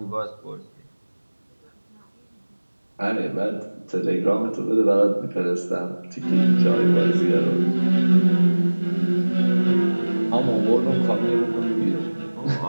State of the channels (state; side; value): inverted; both; correlation -1.00